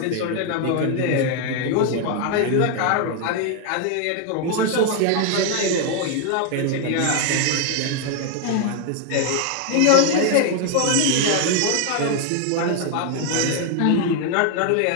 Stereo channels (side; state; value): both; different; correlation 0.00